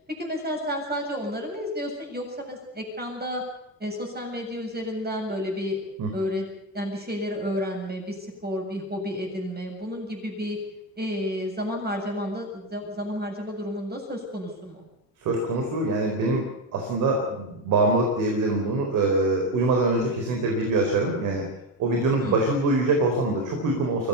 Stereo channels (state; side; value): normal; both; correlation 0.14